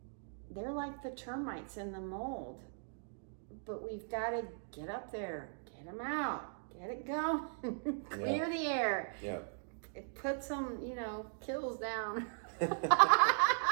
they're like the termites and the mold. But we've got to get up there, get them out, get it going, clear the air. Yeah. Put some, kills down.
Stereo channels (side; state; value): left; silent; digital silence